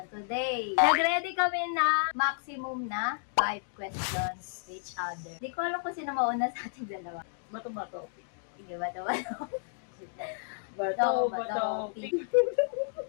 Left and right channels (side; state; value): right; silent; digital silence